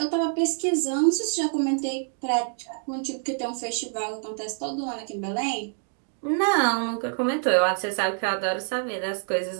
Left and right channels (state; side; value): silent; left; 60 dB below the other